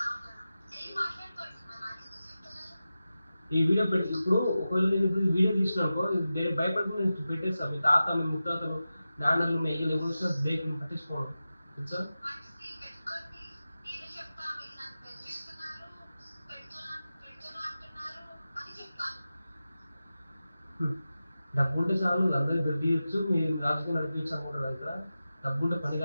ఈ వీడియో పెట్టి ఇప్పుడు ఒకవేళ నేను ఇప్పుడు ఈ వీడియో తీసినాకో భయపడుకుని నేను పెట్టేస్తాను. మీ తాత మీ ముత్తాతలు నాన్నలు మీ అయ్యలు ఎవరు వచ్చినా బ్రేక్ పట్టించుకోవడం తెలుసా? డబ్బు ఉంటే చాలు అందరికీ గడ్డియచ్చు, మీరు రాజకీయం నడిపించచ్చు అనుకుంటారు కదా. డబ్బు ఉంటే పని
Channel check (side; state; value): both; inverted; correlation -0.93